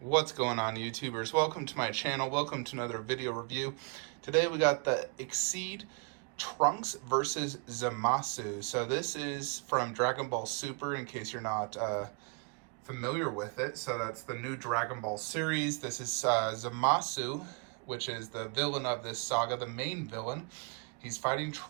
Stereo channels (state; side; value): quieter; left; 34.9 dB